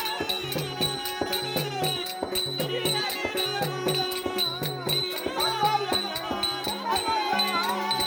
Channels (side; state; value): both; identical; correlation 1.00